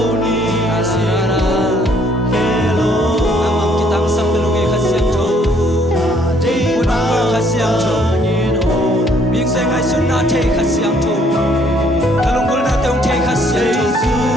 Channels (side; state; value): both; normal; correlation 0.64